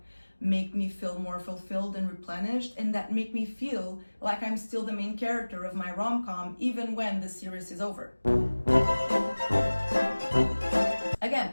make me feel more fulfilled and replenished, and that make me feel like I'm still the main character of my rom-com even when the series is over. Again,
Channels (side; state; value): both; inverted; correlation -1.00